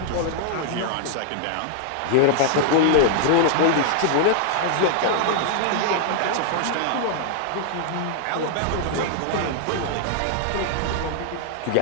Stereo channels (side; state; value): both; different; correlation 0.00